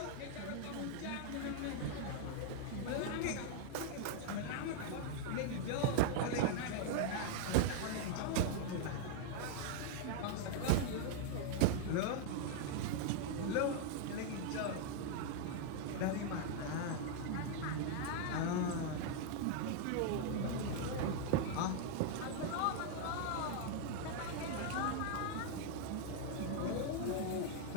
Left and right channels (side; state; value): both; different; correlation 0.00